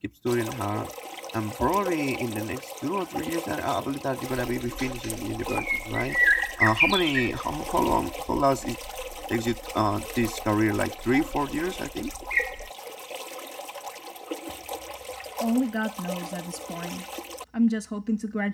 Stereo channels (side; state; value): both; identical; correlation 1.00